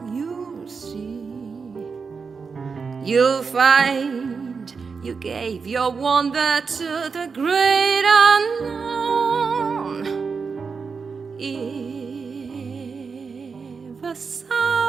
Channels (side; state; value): left; quieter; 5.2 dB